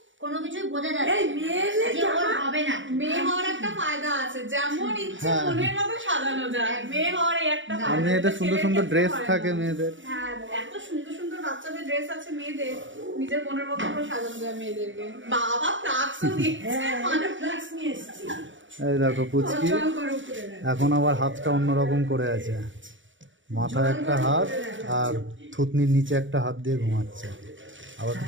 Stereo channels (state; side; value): late; left; 0.56 ms